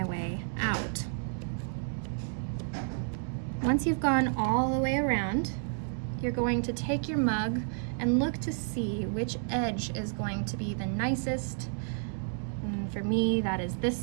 way out. Once you've gone all the way around, you're going to take your mug and look to see which edge is going to be the nicest. And for me, that is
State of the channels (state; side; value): silent; left; digital silence